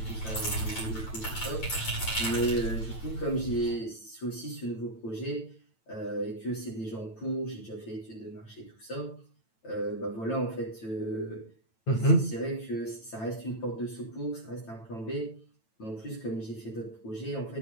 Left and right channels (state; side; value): late; right; 9.0 ms